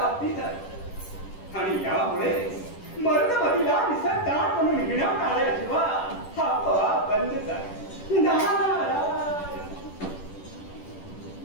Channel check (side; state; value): right; late; 10 ms